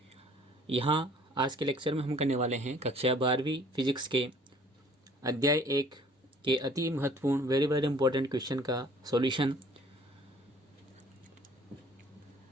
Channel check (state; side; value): normal; both; correlation 0.54